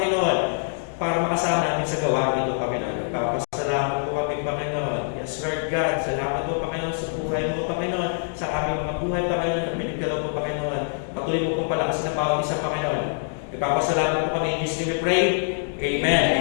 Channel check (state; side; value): silent; right; digital silence